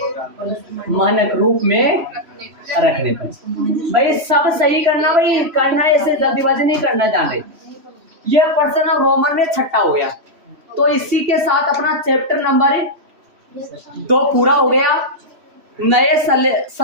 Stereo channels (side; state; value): left; late; 3.1 ms